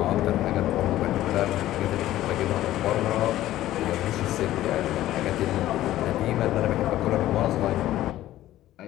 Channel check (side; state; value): right; quieter; 14.3 dB